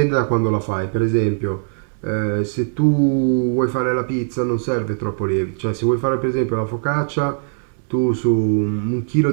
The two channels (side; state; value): left; silent; digital silence